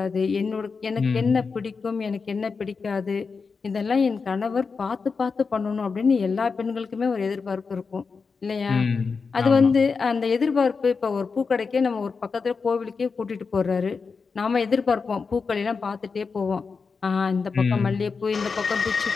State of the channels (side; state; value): right; quieter; 5.0 dB